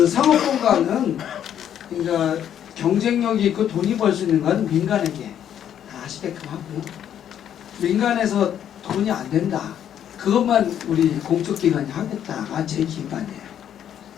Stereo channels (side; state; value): right; quieter; 9.8 dB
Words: 상업공간은 그러니까 경쟁력이 있고 돈이 벌 수 있는 건 민간에게 다 하시게끔 하고요. 민간에서 돈이 안 된다. 그것만 우리 공적기관이 하겠다가 제 기관이에요.